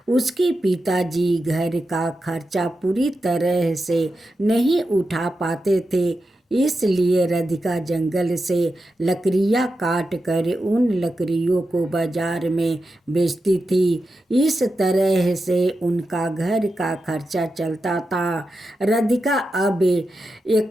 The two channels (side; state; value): both; normal; correlation 0.89